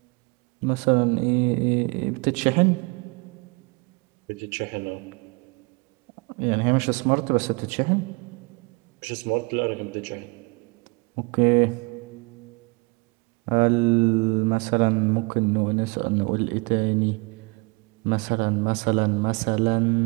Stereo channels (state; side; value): quieter; left; 29.0 dB